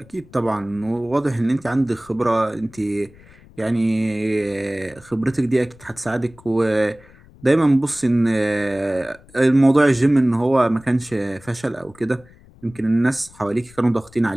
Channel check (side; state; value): left; noise; rumble, 25 dB below the sound